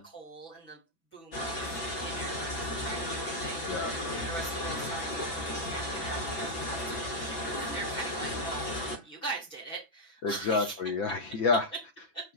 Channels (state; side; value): late; right; 6.1 ms